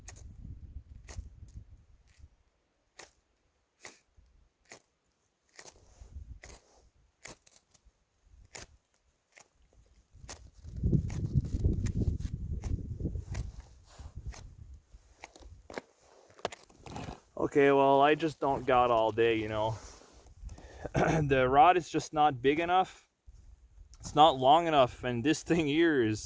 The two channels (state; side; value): identical; both; correlation 1.00